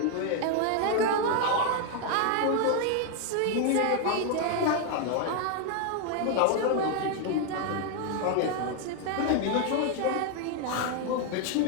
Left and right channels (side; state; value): both; different; correlation 0.01